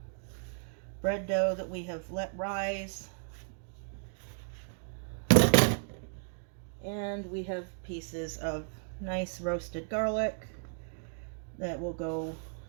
bread dough that we have let rise, and we have pieces of nice roasted garlic that will go.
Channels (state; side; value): silent; left; digital silence